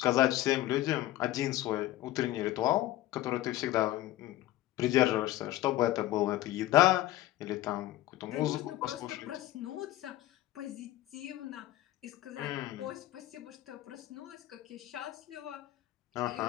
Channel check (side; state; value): right; quieter; 15.3 dB